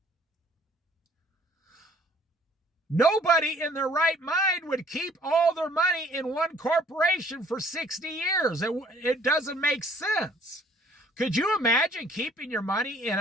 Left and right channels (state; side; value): normal; both; correlation 0.58